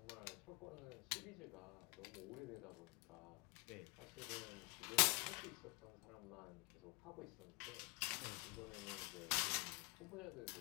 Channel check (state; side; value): quieter; right; 31.1 dB